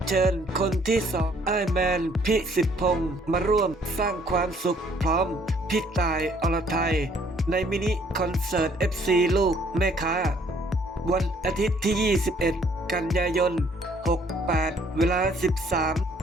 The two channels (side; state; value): both; normal; correlation 0.62